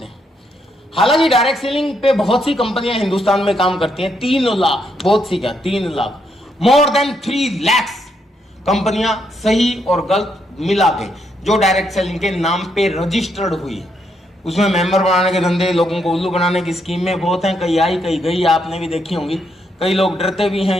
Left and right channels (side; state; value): both; normal; correlation 0.77